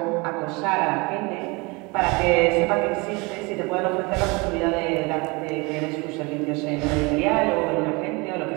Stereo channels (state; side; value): quieter; left; 26.7 dB